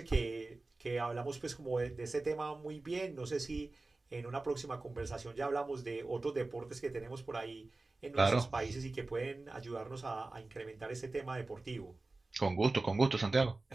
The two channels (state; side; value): quieter; left; 3.3 dB